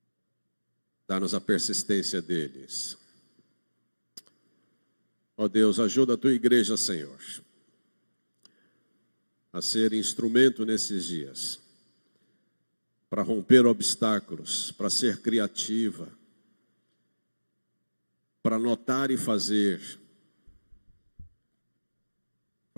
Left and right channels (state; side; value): inverted; both; correlation -1.00